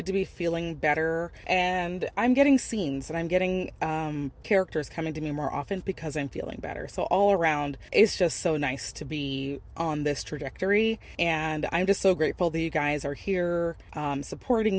to be feeling better, and I'm getting scenes and I'm getting characters coming to me more often because I'm feeling better. So all around, it's just so nice to be on this trajectory, and I'm just so grateful that you guys are here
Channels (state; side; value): identical; both; correlation 1.00